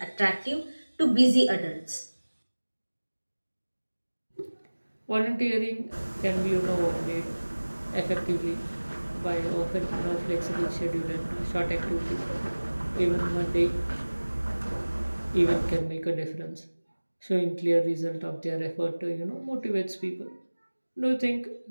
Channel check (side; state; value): both; inverted; correlation -1.00